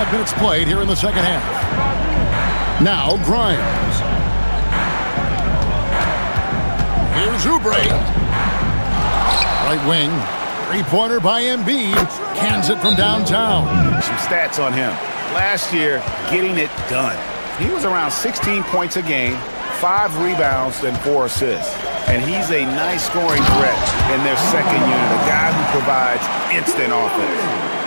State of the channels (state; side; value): inverted; both; correlation -1.00